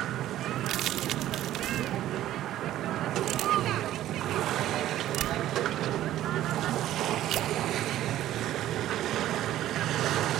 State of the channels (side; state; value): left; quieter; 13.3 dB